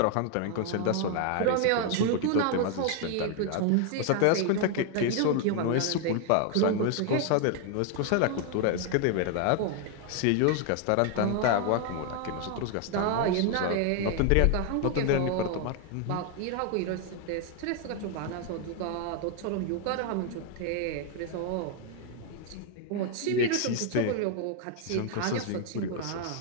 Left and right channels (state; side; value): different; both; correlation 0.00